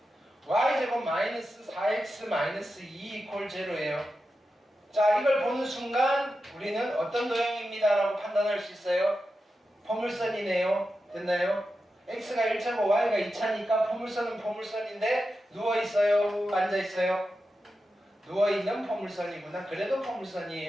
y제곱 마이너스 4x 마이너스 2 이퀄 제로예요. 자 이걸 보는 순간 우리는 어떤 도형입니다 라고 판단할 수 있어요. 포물선이네요. 됐나요? x가 1차고 y가 2차니까 포물선은 포물선인데 누워있어요? 앉아있어요? 누워있는 포물선이구나. 그래도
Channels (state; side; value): normal; both; correlation 0.90